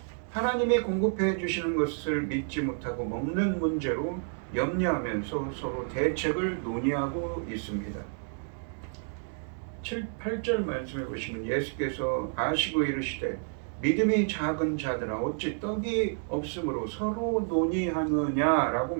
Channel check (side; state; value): left; silent; 58 dB below the other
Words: 하나님이 공급해 주시는 것을 믿지 못하고 먹는 문제로 염려하면서 서로 대책을 논의하고 있습니다. 8절 말씀해 보시면 예수께서 아시고 이르시되 믿음이 작은 자들아 어찌 떡이 없으므로 서로 논의하느냐라고